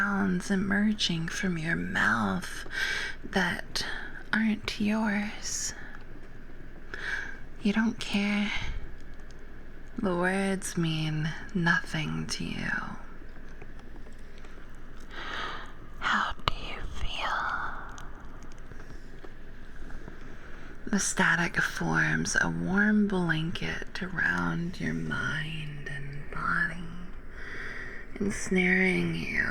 emerging from your mouth that aren't yours. You don't care. The words mean nothing to you. How do you feel? The static forms a warm blanket around your mind and body, ensnaring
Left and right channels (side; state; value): both; identical; correlation 1.00